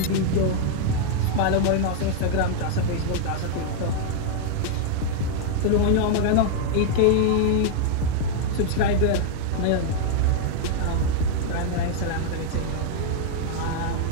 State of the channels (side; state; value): both; different; correlation -0.01